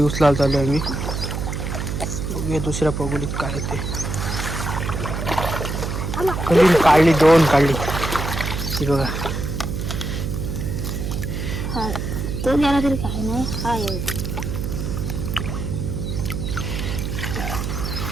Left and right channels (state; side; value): noise; right; hum, 3 dB below the sound